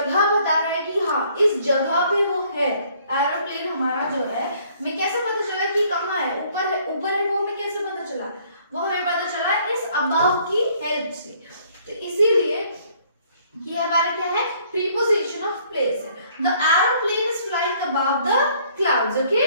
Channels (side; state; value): both; inverted; correlation -0.62